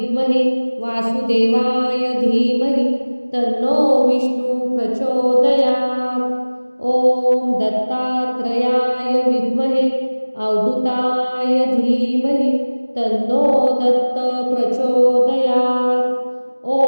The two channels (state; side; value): inverted; both; correlation -1.00